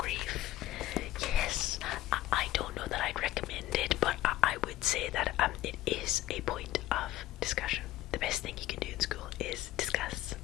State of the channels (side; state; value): right; quieter; 15.3 dB